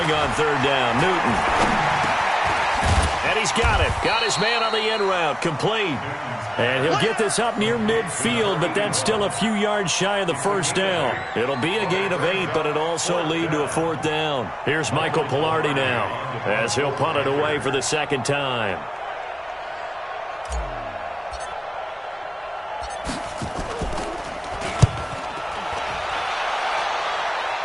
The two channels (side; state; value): both; identical; correlation 1.00